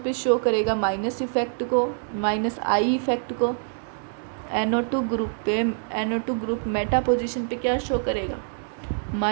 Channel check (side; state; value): left; silent; digital silence